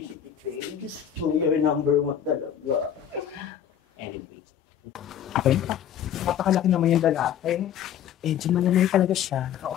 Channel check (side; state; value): right; quieter; 9.5 dB